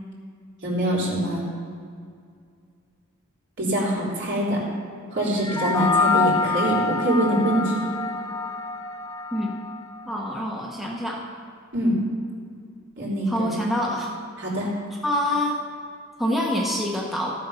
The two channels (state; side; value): normal; both; correlation 0.43